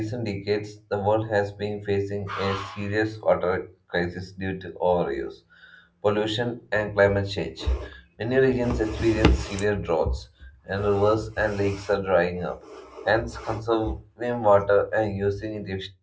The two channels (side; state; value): both; identical; correlation 1.00